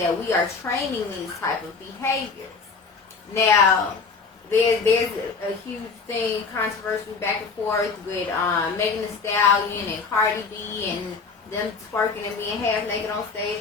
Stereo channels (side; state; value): right; quieter; 4.8 dB